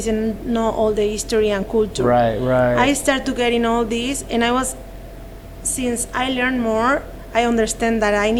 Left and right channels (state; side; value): identical; both; correlation 1.00